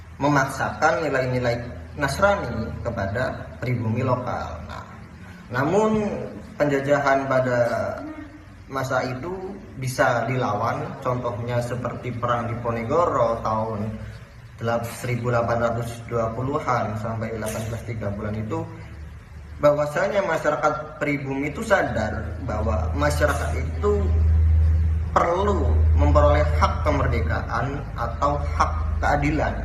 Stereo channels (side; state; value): both; identical; correlation 1.00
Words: memaksakan nilai-nilai Nasrani kepada pribumi lokal. Namun penjajahan pada masa itu bisa dilawan, contohnya seperti perang Diponegoro tahun 1820-an sampai 1830-an itu, bahwasanya masyarakat pribumi itu sadar bahwa masyarakat itu perlu memperoleh hak kemerdekaan atau hak keadilan,